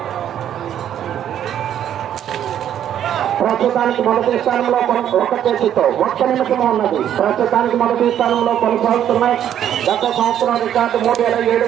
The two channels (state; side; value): quieter; left; 10.3 dB